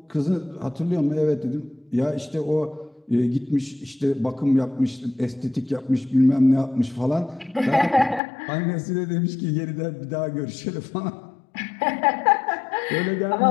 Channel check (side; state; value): right; drops out; at 8.2 s